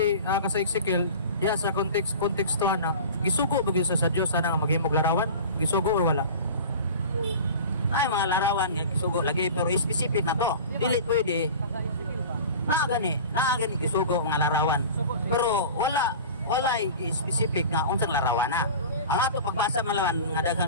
sa Ezekiel diya sa kontekstuhan na gisugo ba gyud sa Dios sana nga maghimog larawan? Gisugo or wala? Ay mga larawan nga gisugo lagi pero specific na to. Dili pwede. Naa gani gisugo nga larawan. Pero wala specific nga unsang larawan na. Ang ato pagbasa malawan nga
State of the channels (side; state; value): both; inverted; correlation -0.36